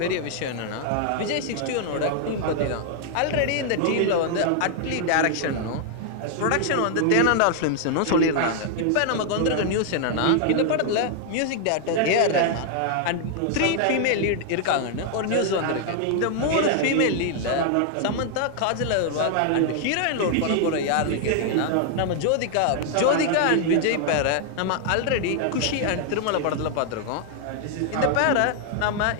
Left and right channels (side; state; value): both; different; correlation 0.00